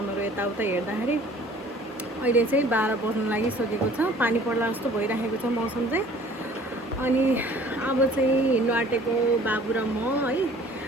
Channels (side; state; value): both; normal; correlation 0.51